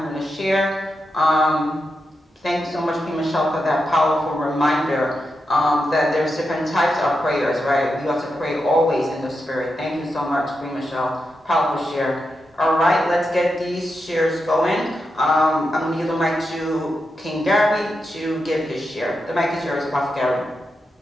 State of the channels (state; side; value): normal; both; correlation 0.87